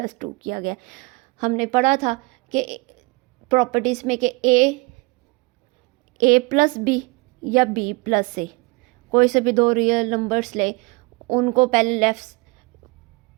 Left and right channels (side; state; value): left; quieter; 26.5 dB